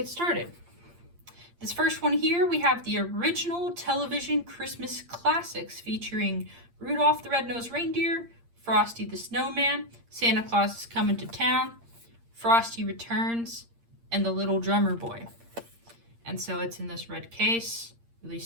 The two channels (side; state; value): left; late; 8.6 ms